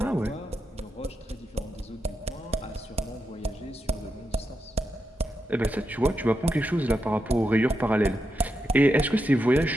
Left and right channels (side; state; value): both; normal; correlation 0.85